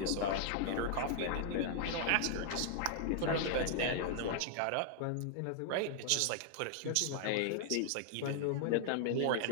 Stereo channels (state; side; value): different; both; correlation -0.01